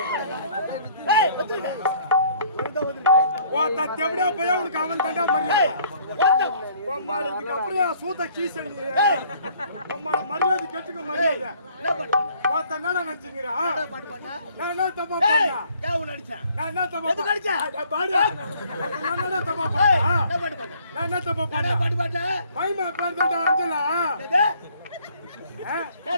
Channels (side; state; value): both; inverted; correlation -0.60